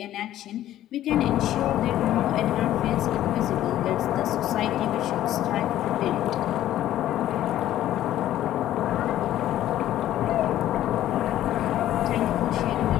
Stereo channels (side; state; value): right; quieter; 13.0 dB